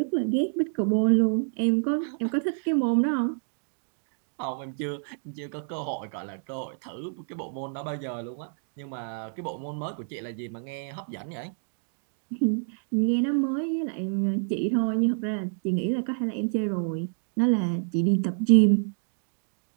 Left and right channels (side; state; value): left; silent; digital silence